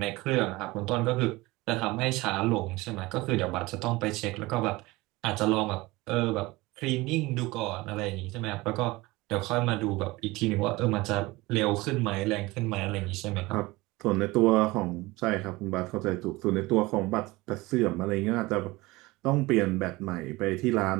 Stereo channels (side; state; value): left; quieter; 21.3 dB